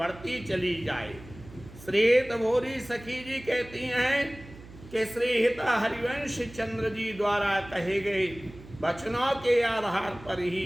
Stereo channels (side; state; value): right; noise; hum, 18 dB below the sound